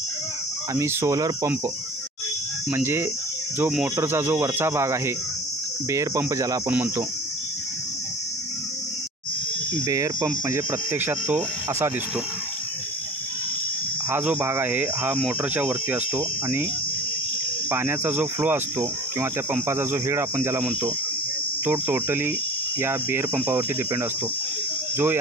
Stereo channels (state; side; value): normal; both; correlation 0.39